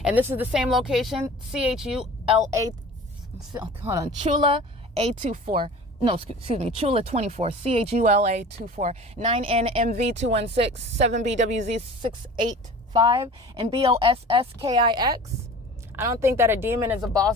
And this is the same location, Chula A24. No, excuse me, Chula 24, CHULA 24, 9NMV216, 7BWZ685, and BOSSKIX. I don't think that a demon is a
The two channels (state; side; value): normal; both; correlation 0.40